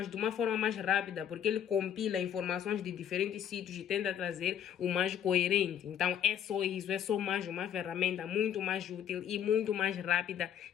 de uma forma mais rápida, porque ele compila informações de diferentes sítios e tenta trazer o mais coerente. Então é só isso, é só mais uma ferramenta muito mais útil e muito mais rápida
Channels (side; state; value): right; quieter; 9.4 dB